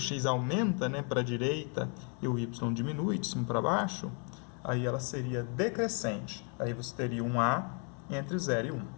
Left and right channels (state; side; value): quieter; right; 39.3 dB